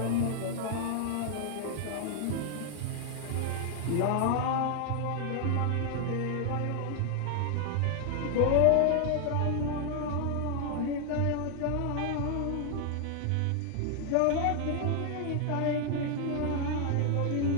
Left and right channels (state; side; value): different; both; correlation 0.00